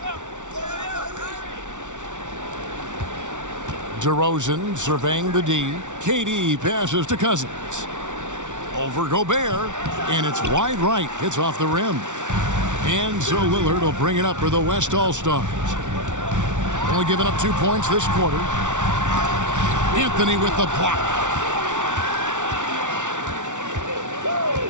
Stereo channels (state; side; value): late; left; 0.86 ms